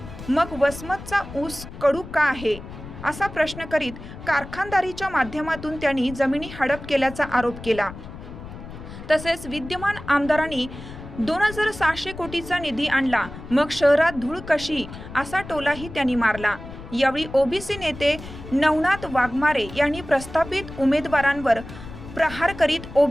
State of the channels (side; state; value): left; noise; rumble, 13 dB below the sound